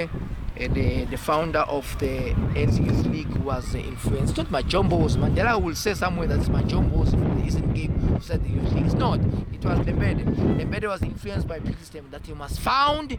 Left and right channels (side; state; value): both; identical; correlation 1.00